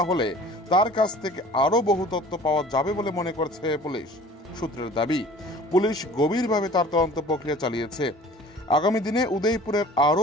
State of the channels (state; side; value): normal; both; correlation 0.46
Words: তার কাছ থেকে আরও বহু তথ্য পাওয়া যাবে বলে মনে করছে পুলিশ। সূত্রের দাবি, পুলিশ গভীরভাবে তার তদন্ত প্রক্রিয়া চালিয়েছে। আগামী দিনে উদয়পুরের আরও